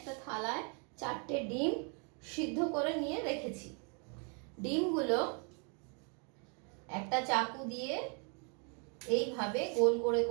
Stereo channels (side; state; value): left; quieter; 37.4 dB